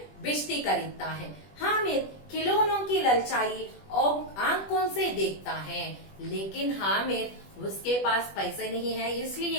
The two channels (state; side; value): late; right; 20 ms